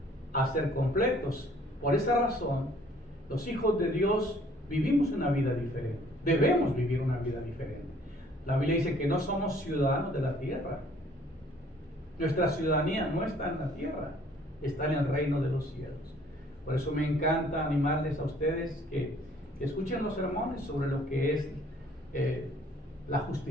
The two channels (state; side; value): normal; both; correlation 0.58